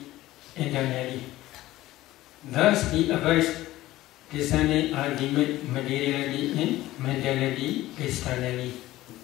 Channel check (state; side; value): quieter; right; 16.3 dB